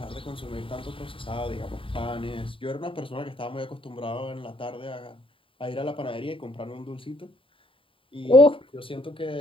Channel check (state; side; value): late; right; 0.25 ms